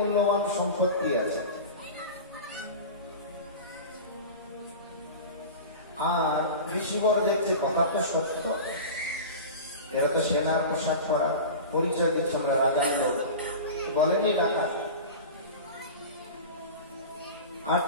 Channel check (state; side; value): inverted; both; correlation -0.31